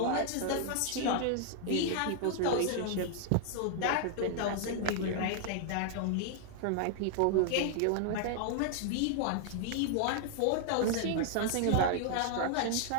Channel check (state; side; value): different; both; correlation 0.00